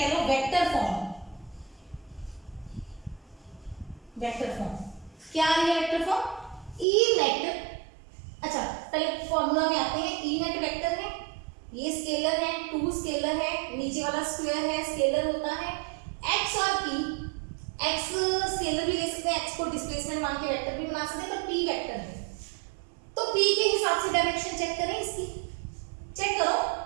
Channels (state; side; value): drops out; left; at 6.9 s